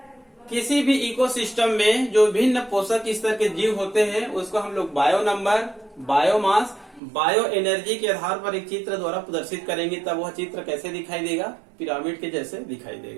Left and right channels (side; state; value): left; drops out; at 7.0 s